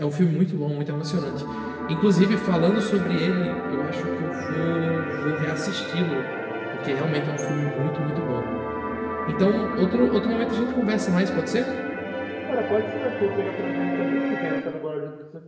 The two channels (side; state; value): both; identical; correlation 1.00